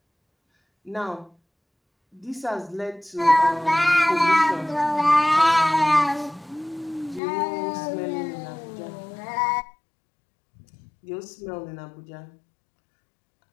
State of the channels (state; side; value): drops out; right; at 7.2 s